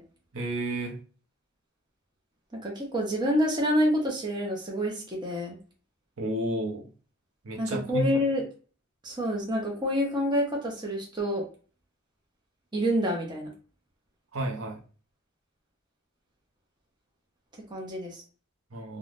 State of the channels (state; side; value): normal; both; correlation 0.52